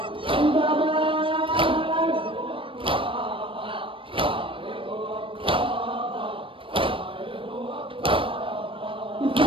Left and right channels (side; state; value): left; late; 0.25 ms